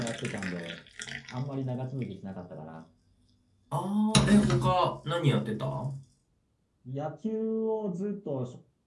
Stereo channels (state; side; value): identical; both; correlation 1.00